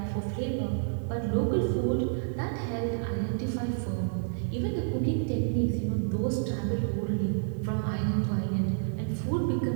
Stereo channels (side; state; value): left; silent; digital silence